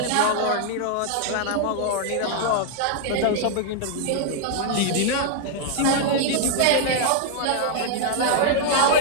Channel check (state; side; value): different; both; correlation -0.01